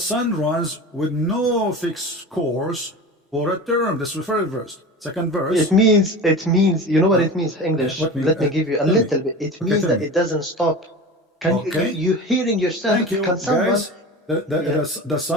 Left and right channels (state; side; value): normal; both; correlation 0.32